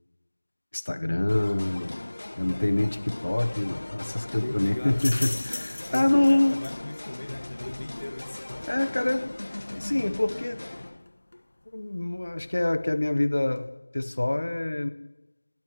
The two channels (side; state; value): both; inverted; correlation -1.00